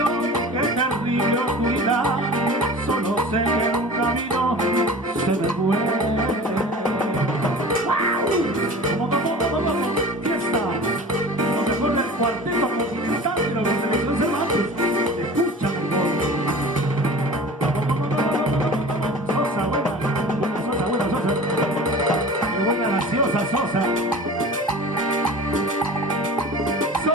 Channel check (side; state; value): both; normal; correlation 0.39